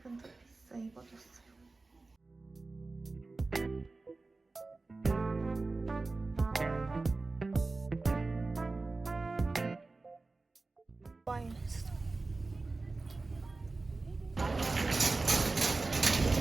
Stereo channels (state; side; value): quieter; left; 3.5 dB